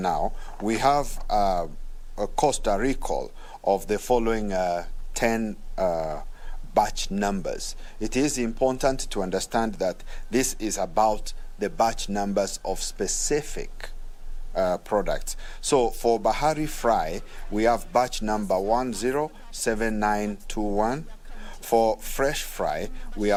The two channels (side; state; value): both; identical; correlation 1.00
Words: we have a Costa recall of the following 10 batch numbers. It is important to understand that this is about the batch numbers of specific products. So for Bahari Fry, we have batch number 107921. For Fresh Fry, we